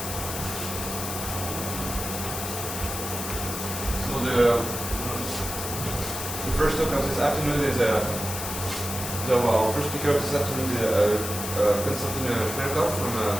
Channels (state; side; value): noise; left; hiss, 5 dB below the sound